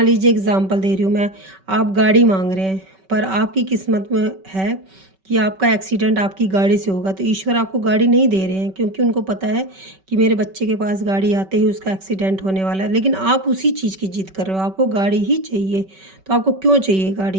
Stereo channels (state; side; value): late; left; 5.2 ms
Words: लीजिए एग्जाम्पल दे रही हूँ मैं, आप गाड़ी मांग रहे हैं पर आपकी किस्मत में है कि आपका एक्सीडेंट आपकी गाड़ी से होगा, तो ईश्वर आपको गाड़ी नहीं दे रहे हैं क्योंकि उनको पता है कि मेरे बच्चे के पास गाड़ी आते ही उसका एक्सीडेंट होने वाला है। लेकिन आप उसी चीज़ की जिद कर रहे हो, आपको गाड़ी ही चाहिए। तो आपको क्यों चाहिए